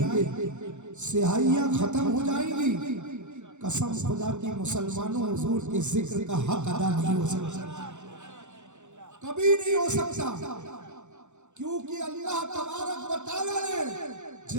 گے, سیاہیاں ختم ہو جائیں گی. قسم خدا کی مسلمانوں حضور کے ذکر کا حق ادا نہیں ہو سکتا, کبھی نہیں ہو سکتا. کیونکہ اللہ تبارک و تعالیٰ نے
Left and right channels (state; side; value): late; left; 0.84 ms